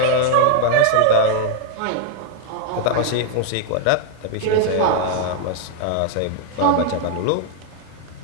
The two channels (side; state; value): both; different; correlation 0.00